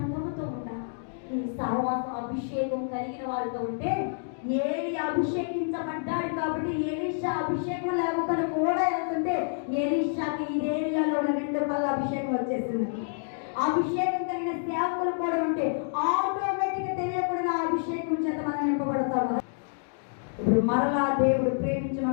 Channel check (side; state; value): right; silent; digital silence